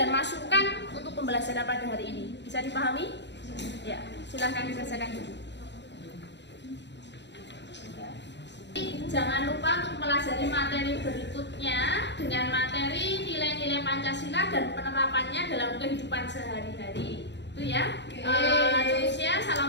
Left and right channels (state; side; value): late; right; 0.51 ms